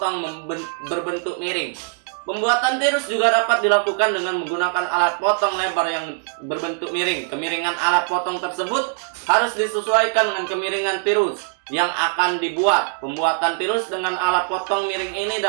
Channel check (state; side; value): silent; left; digital silence